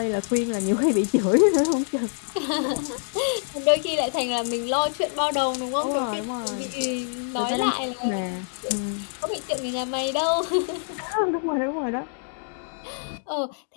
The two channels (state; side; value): silent; right; digital silence